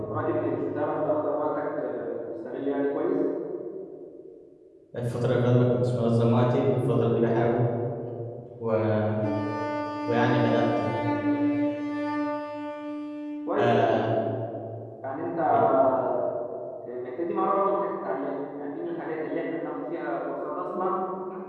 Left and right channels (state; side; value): identical; both; correlation 1.00